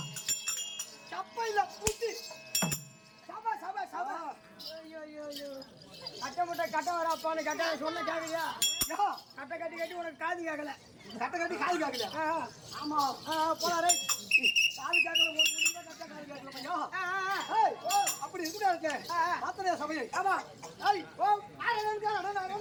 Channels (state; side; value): identical; both; correlation 1.00